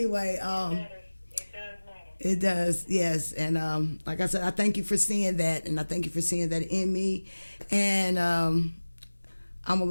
It does matter. it does, yes. And like I said, I thank you for seeing that, and I thank you for seeing that in me. And I'm going to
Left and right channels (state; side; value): inverted; both; correlation -1.00